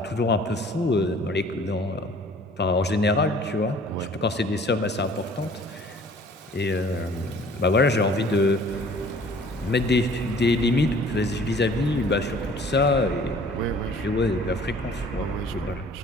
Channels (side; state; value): both; normal; correlation 0.52